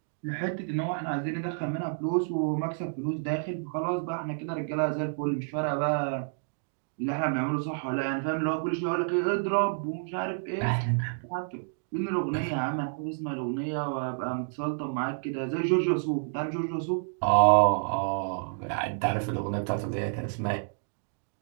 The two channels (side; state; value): left; silent; digital silence